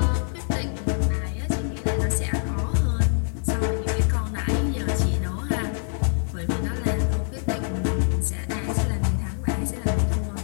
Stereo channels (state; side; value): silent; right; digital silence